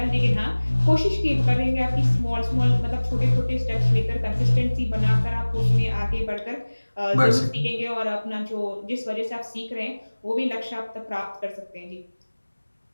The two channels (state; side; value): inverted; both; correlation -1.00